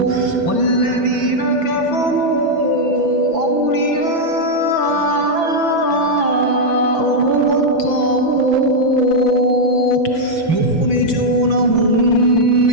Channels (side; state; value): right; late; 5.9 ms